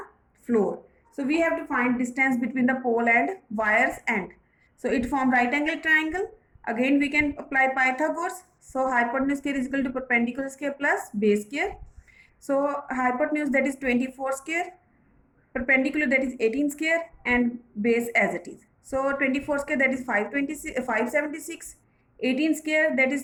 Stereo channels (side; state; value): both; identical; correlation 1.00